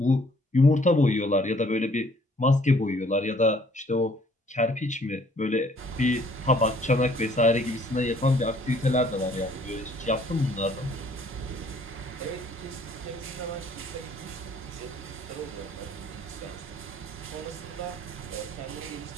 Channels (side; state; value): both; normal; correlation 0.60